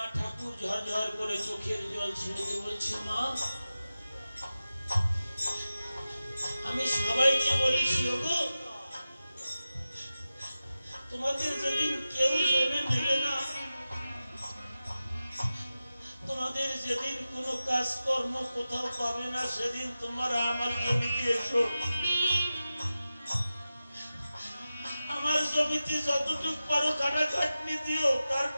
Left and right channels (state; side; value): inverted; both; correlation -0.94